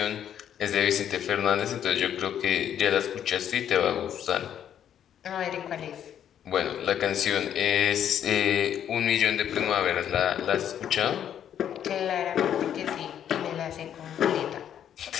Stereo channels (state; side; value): quieter; right; 9.7 dB